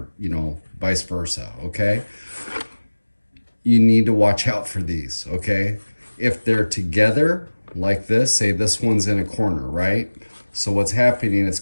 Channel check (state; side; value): inverted; both; correlation -1.00